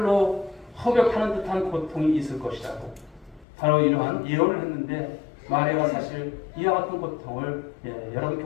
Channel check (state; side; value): drops out; right; at 3.5 s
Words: 허격하는 듯한 고통이 있을 것이라고 바로 이러한 예언을 했는데 마리아가 사실 이와 같은 고통을 여러분